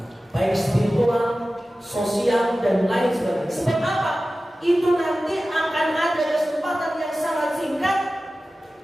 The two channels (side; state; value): both; normal; correlation 0.95